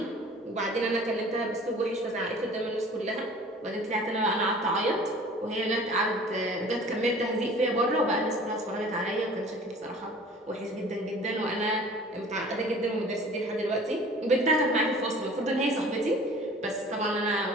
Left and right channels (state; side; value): normal; both; correlation 0.46